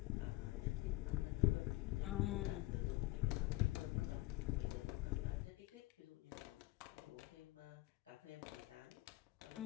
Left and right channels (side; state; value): right; quieter; 18.9 dB